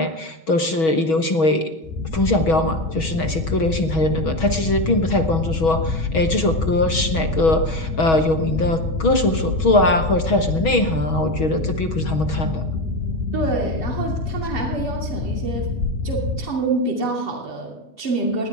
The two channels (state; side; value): late; right; 6.2 ms